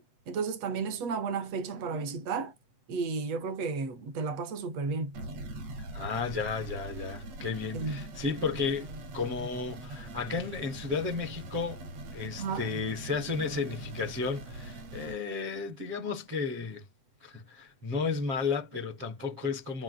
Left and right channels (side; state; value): left; late; 7.9 ms